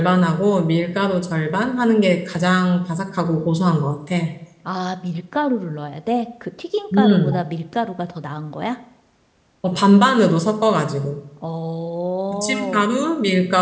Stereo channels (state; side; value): identical; both; correlation 1.00